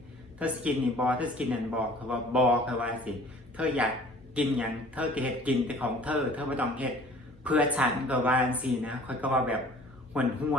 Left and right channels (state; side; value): normal; both; correlation 0.50